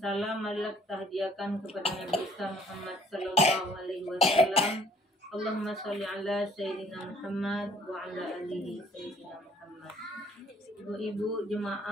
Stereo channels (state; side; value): normal; both; correlation 0.58